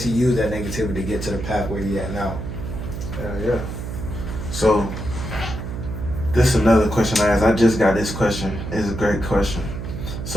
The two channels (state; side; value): noise; right; hum, 7 dB below the sound